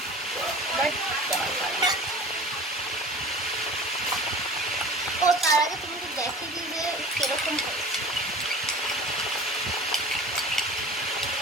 ও তার আগে তুমি তো দেখে দিই যে কিরকম হয়েছে।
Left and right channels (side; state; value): both; normal; correlation 0.40